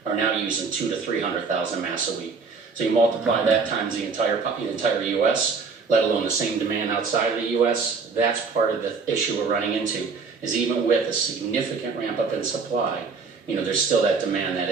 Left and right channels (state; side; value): quieter; left; 4.9 dB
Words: are now using 200 to 300,000 masks a week. So you multiply that times the entire U.S., let alone the same demand outside of the U.S. That's part of the issue we're running into, is even with a significant ramp up in supply, there's still that demand that